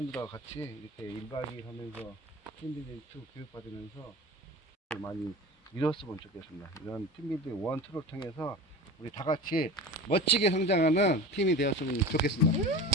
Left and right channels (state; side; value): normal; both; correlation 0.34